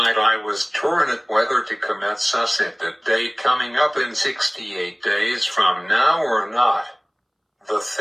I was torn at whether to commit suicide the day coming up in 68 days from now or not. The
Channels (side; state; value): both; identical; correlation 1.00